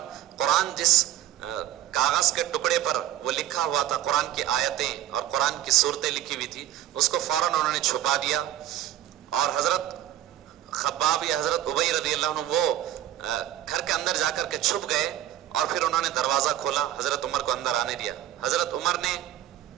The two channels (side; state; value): left; quieter; 12.5 dB